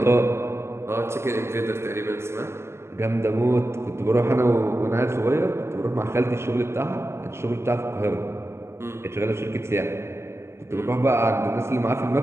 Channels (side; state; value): left; late; 0.13 ms